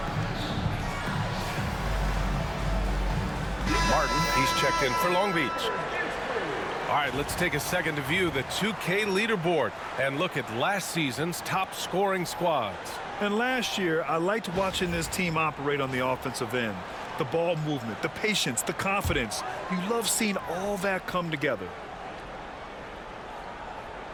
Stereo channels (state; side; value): identical; both; correlation 1.00